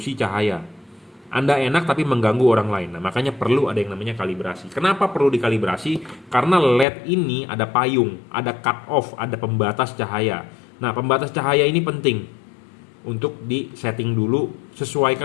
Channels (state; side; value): drops out; right; at 6.9 s